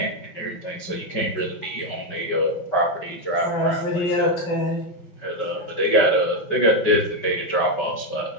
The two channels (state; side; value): late; right; 5.3 ms